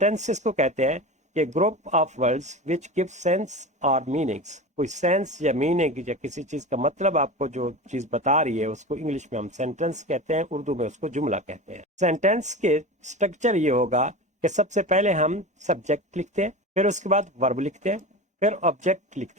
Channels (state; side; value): normal; both; correlation 0.29